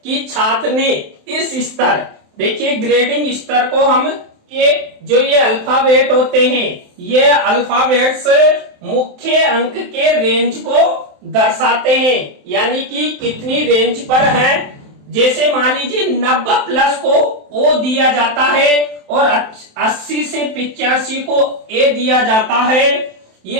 कि छात्र ने इस स्तर, देखिए ग्रेडिंग स्तर को हम ये अल्फाबेट होते हैं, ये अल्फाबेट्स मुख्य अंक के रेंज को दर्शाते हैं, यानी कि कितनी रेंज पर है। जैसे मान लीजिए 90 प्लस को ओ दिया जाता है और 80 से 85 को ए दिया जाता है।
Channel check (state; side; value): late; left; 27 ms